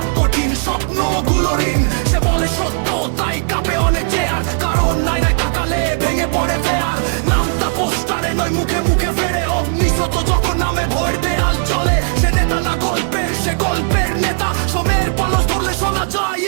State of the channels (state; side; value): silent; left; digital silence